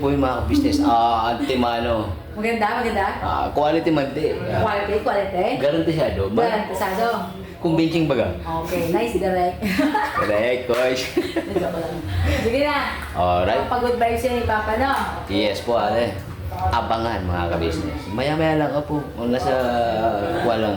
po yung mga business. Antimano. Maganda, maganda. Quality man di. Quality. Garantisado ba? Garantisado. Convincing baga. Okay, nice, direct. Correct, Coach. Joke lang. Sige na. Alright. Pag-good vibes yan ni Papa, no? Yes po, ate. Abangan mga ka-business. Maya-maya lang po. Kung nasa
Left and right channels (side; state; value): both; identical; correlation 1.00